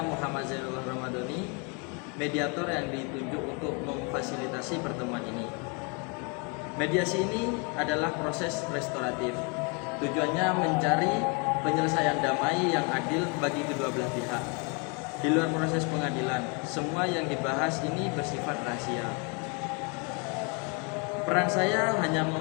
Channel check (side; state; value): right; quieter; 33.1 dB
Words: Muhammad Zainullah Ramadhani, mediator yang ditunjuk untuk memfasilitasi pertemuan ini. Mediasi ini adalah proses restoratif. Tujuannya mencari penyelesaian damai yang adil bagi kedua belah pihak. Di luar proses pengadilan, semua yang dibahas ini bersifat rahasia. Peran saya hanya